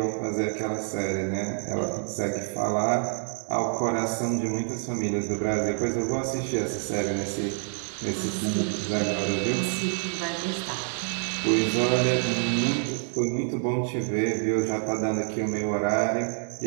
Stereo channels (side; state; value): left; silent; digital silence